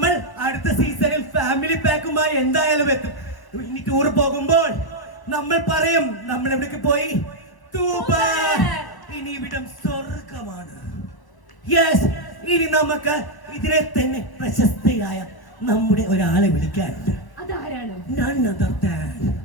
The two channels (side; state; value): right; late; 1.0 ms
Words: അടുത്ത സീസണിൽ ഫാമിലി പാക്കുമായി എന്തായാലും എത്തും. ഇനി ടൂർ പോകുമ്പോൾ നമ്മൾ പറയും നമ്മൾ എവിടേക്ക് പോയി? തൂബർ. ഇനി ഇവിടം സ്വർഗമാണ്. യെസ്, ഇനി നമുക്ക് ഇതിനെ തന്നെ പ്രശസ്തയായ നമ്മുടെ ഒരാളെ വിളിക്കാനുണ്ട്. അതാരാണ്? None other than